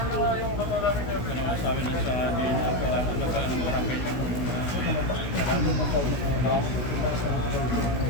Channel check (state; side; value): late; right; 16 ms